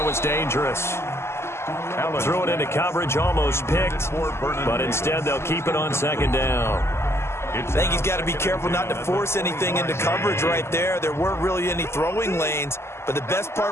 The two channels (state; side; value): late; right; 0.12 ms